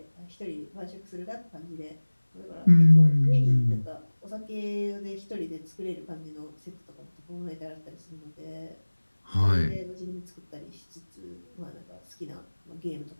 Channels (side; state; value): both; inverted; correlation -1.00